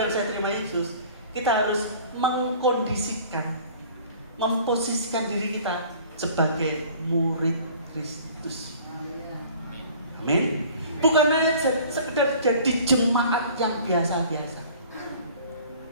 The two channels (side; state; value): both; inverted; correlation -0.48